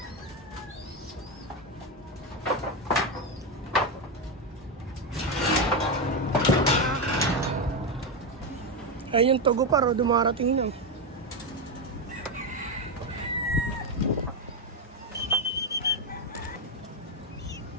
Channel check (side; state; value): both; normal; correlation 0.08